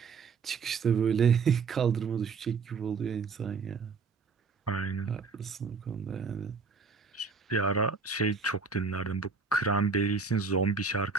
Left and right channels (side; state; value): left; quieter; 5.0 dB